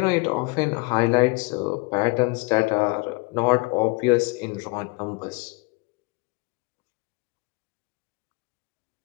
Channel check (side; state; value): right; quieter; 27.9 dB